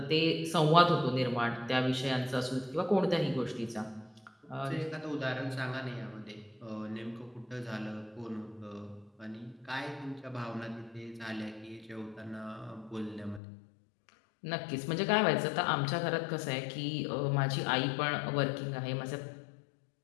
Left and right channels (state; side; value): drops out; right; at 13.4 s